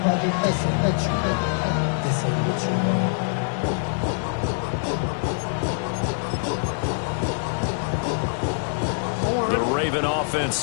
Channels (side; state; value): right; silent; 62 dB below the other